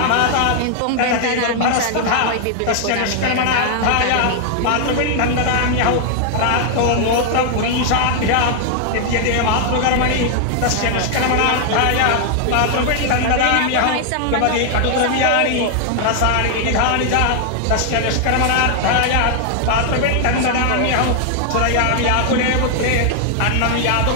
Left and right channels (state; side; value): different; both; correlation 0.00